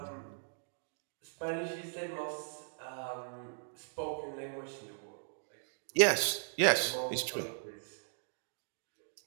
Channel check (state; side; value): silent; left; digital silence